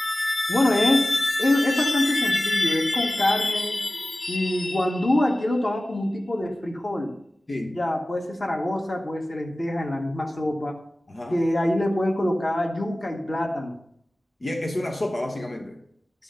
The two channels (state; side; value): normal; both; correlation 0.97